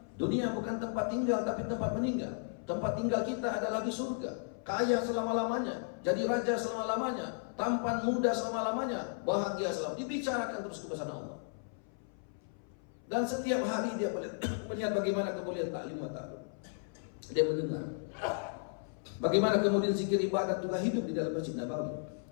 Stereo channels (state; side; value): silent; right; 55 dB below the other